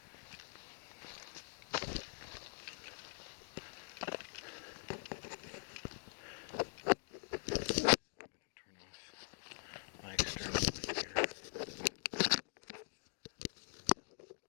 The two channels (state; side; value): silent; right; digital silence